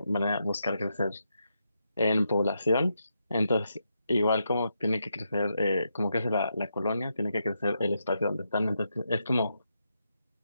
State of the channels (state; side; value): inverted; both; correlation -0.83